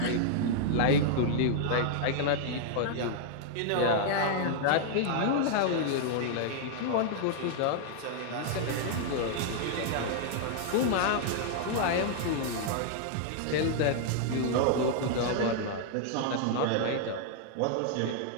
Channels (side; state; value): both; different; correlation -0.01